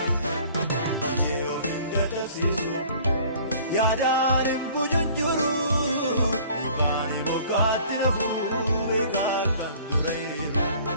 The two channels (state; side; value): inverted; both; correlation -0.51